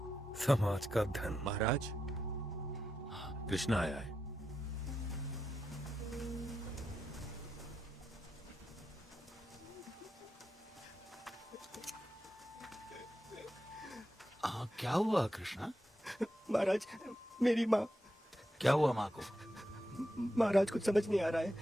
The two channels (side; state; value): both; normal; correlation 0.87